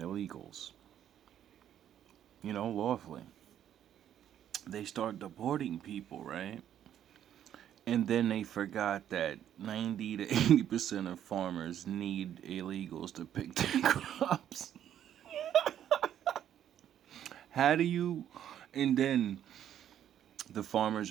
You know, lawfully. They start deporting people, right? And then they forgot that 90 to 80% of farmers need illegals to pick their crops. How do you... And then the farmers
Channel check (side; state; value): left; quieter; 10.4 dB